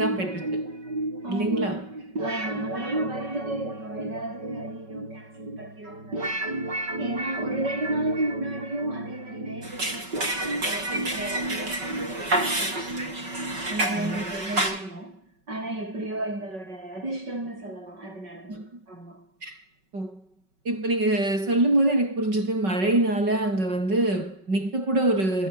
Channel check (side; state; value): left; late; 5.3 ms